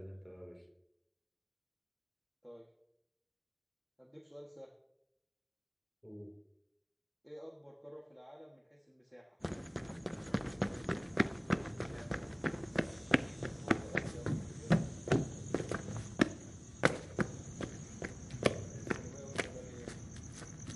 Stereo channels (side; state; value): both; identical; correlation 1.00